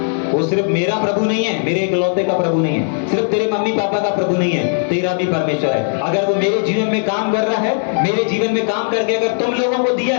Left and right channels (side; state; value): right; silent; 66 dB below the other